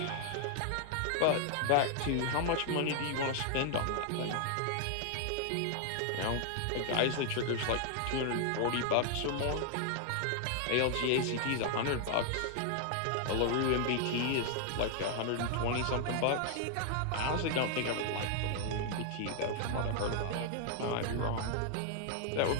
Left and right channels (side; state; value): both; different; correlation 0.00